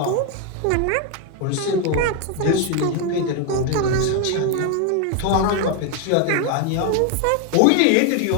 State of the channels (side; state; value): both; different; correlation 0.01